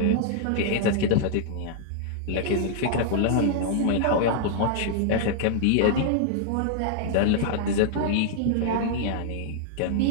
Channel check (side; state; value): both; different; correlation -0.01